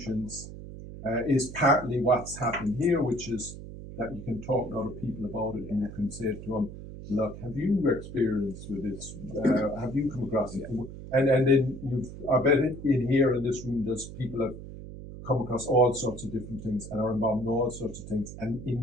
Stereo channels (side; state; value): right; noise; hum, 12 dB below the sound